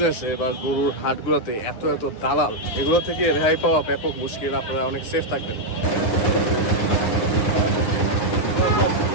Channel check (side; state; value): right; late; 9.7 ms